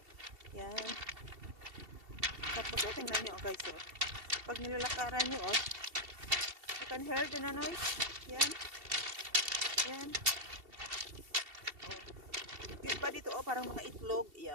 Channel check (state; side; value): late; left; 2.7 ms